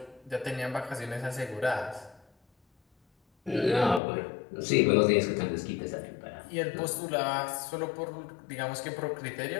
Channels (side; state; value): right; drops out; at 4.0 s